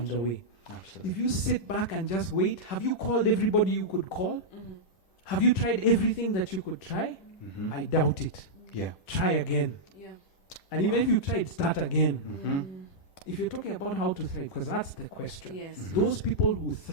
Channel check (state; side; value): late; right; 10 ms